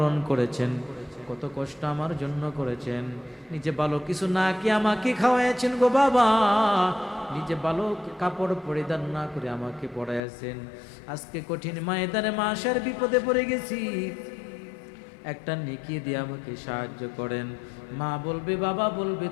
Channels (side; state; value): right; drops out; at 10.2 s